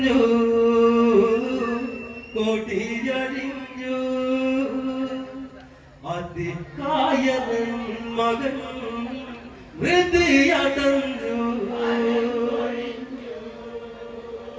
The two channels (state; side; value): identical; both; correlation 1.00